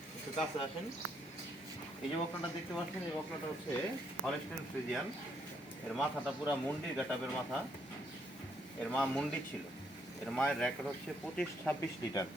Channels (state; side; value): normal; both; correlation 0.73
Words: একটু কাছে আসেন। এই যে বকনাটা দেখতে পাচ্ছেন, এই বকনাটা হচ্ছে হলস্টাইন ফ্রিজিয়ান। এর মাথাটা পুরা মুন্ডির গাটাবের মাথা। এর মা মুন্ডি ছিল। এর মায়ের রেকর্ড হচ্ছে 25-26 লিটার।